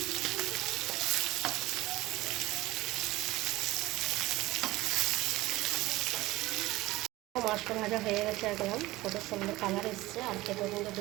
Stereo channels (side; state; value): left; quieter; 18.6 dB